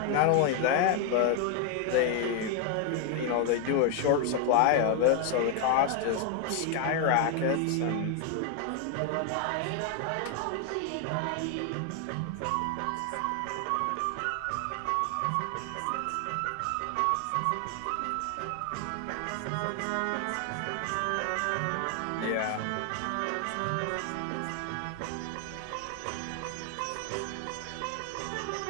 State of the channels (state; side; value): different; both; correlation 0.00